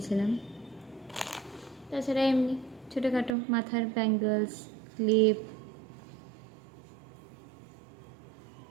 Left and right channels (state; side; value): drops out; left; at 3.4 s